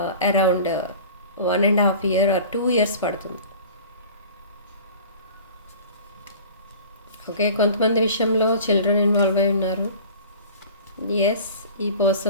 అరౌండ్ 1.5 year or 2 years పడుతుంది. ఓకే, కొంతమంది విషయంలో చిల్డ్రన్ ఇన్వాల్వ్ అయి ఉన్నారు. ఎస్, ఈ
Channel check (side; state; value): both; inverted; correlation -0.42